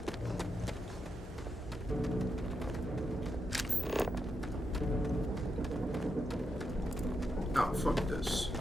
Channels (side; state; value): both; normal; correlation 0.85